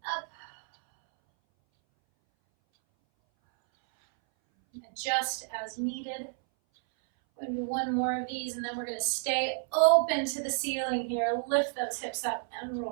up. Adjust as needed. We're going to do one more of these, and then we're going to stay open to the ceiling here. Lift those hips up and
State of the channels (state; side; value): silent; left; 57 dB below the other